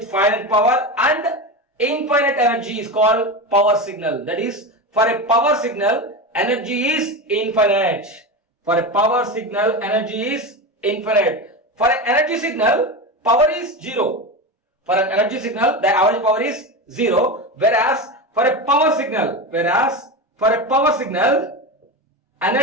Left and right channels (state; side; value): normal; both; correlation 0.21